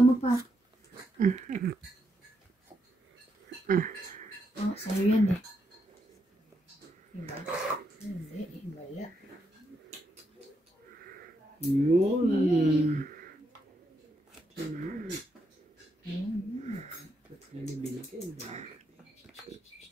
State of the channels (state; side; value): normal; both; correlation 0.80